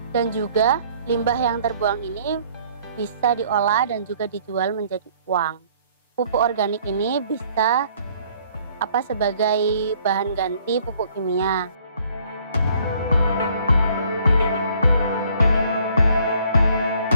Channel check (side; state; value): both; inverted; correlation -0.61